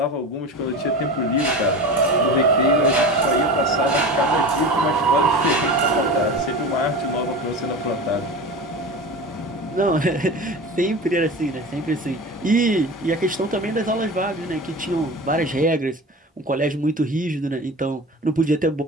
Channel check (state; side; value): normal; both; correlation 0.31